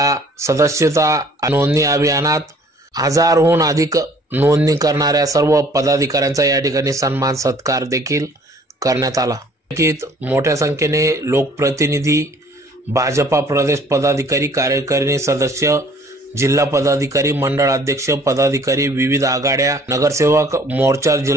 सदस्यता नोंदणी अभियानात 1000हून अधिक नोंदणी करणाऱ्या सर्व पदाधिकाऱ्यांचा या ठिकाणी सन्मान सत्कार देखील करण्यात आला। मोठ्या संख्येने लोकप्रतिनिधी, भाजपा प्रदेश पदाधिकारी, कार्यकारिणी सदस्य, जिल्हा पदाधिकारी, मंडळ अध्यक्ष पदाधिकारी, विविध आघाड्या, नगरसेवक, मोर्चा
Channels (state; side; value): normal; both; correlation 0.55